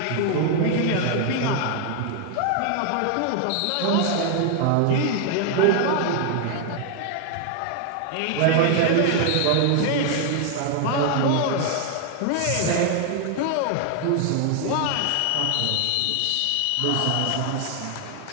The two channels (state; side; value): different; both; correlation 0.00